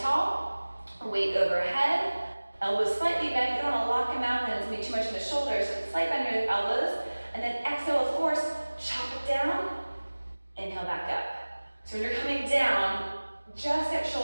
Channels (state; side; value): inverted; both; correlation -1.00